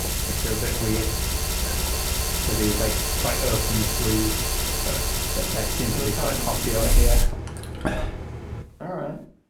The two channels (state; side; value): identical; both; correlation 1.00